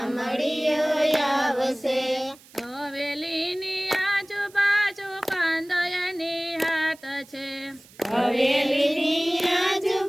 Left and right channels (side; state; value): right; noise; hiss, 25 dB below the sound